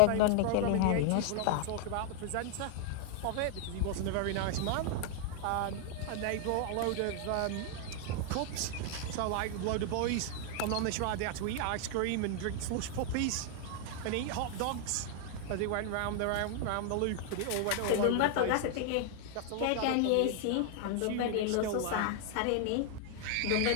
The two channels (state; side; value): different; both; correlation 0.00